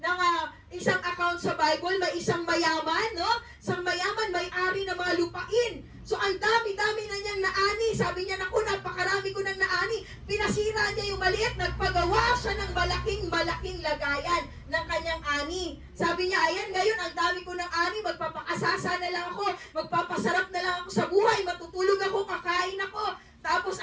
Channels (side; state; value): both; identical; correlation 1.00